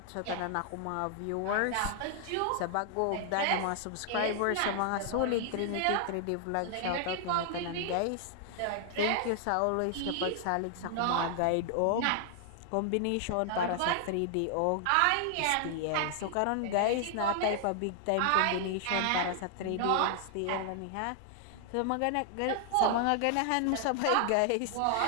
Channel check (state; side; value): different; both; correlation 0.00